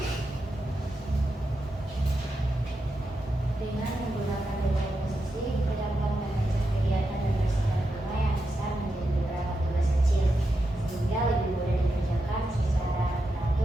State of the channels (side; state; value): both; normal; correlation 0.87